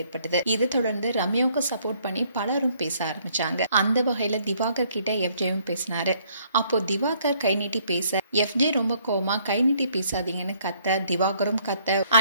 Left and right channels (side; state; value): both; inverted; correlation -0.65